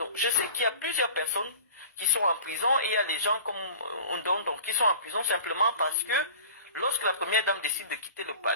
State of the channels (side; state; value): both; inverted; correlation -0.41